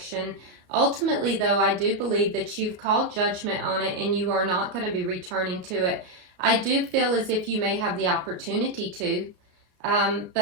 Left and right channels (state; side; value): late; left; 33 ms